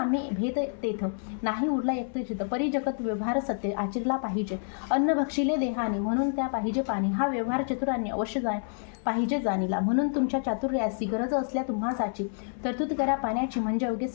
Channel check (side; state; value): right; silent; 59 dB below the other